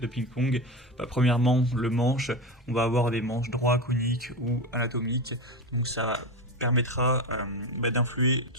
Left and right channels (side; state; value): both; normal; correlation 0.19